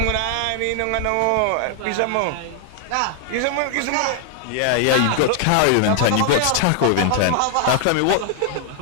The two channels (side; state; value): both; different; correlation 0.00